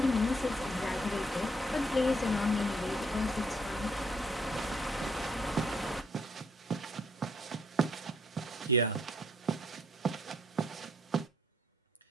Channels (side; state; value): both; normal; correlation 0.67